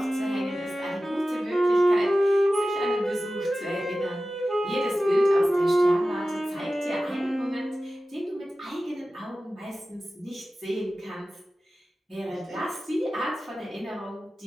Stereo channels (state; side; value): normal; both; correlation 0.95